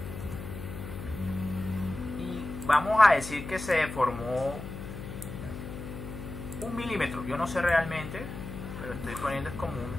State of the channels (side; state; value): left; noise; hum, 9 dB below the sound